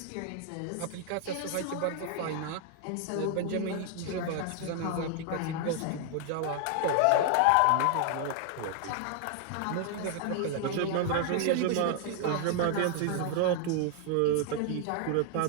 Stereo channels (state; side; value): different; both; correlation 0.00